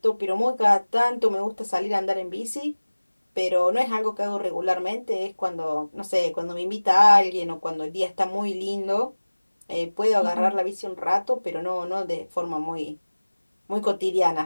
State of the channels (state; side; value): inverted; both; correlation -1.00